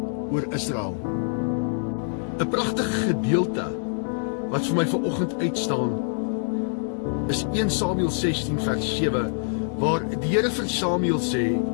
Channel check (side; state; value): right; silent; digital silence